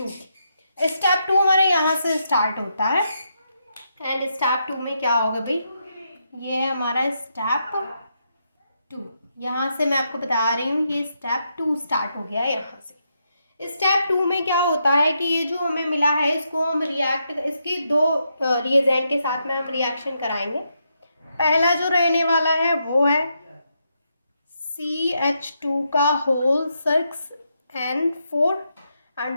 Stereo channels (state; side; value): inverted; both; correlation -0.81